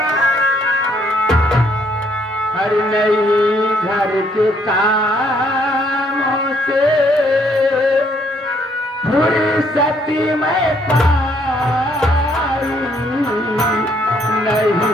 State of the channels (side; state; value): both; normal; correlation 0.68